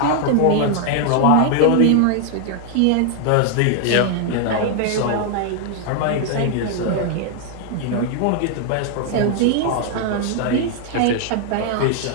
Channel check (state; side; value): different; both; correlation 0.00